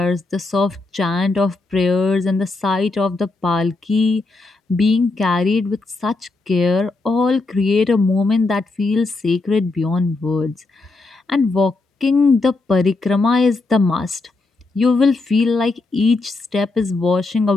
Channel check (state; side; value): quieter; right; 3.4 dB